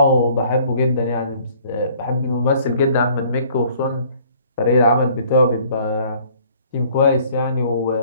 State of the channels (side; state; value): both; inverted; correlation -0.57